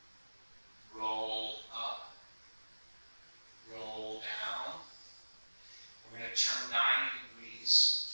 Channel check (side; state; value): both; inverted; correlation -1.00